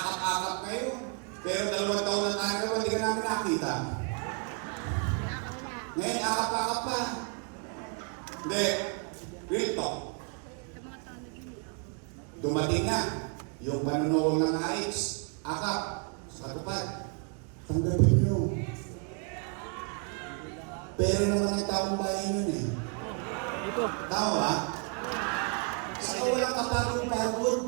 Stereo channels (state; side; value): quieter; left; 37.1 dB